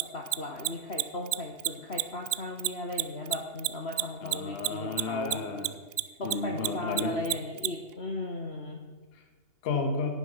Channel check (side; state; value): right; late; 2.8 ms